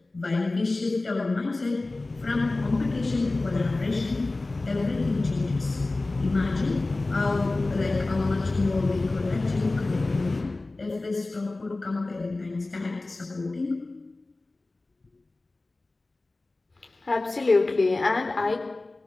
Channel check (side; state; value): right; quieter; 3.1 dB